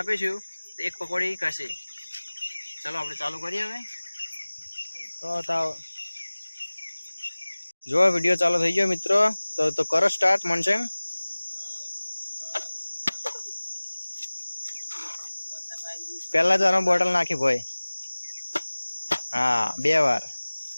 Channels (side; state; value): both; inverted; correlation -1.00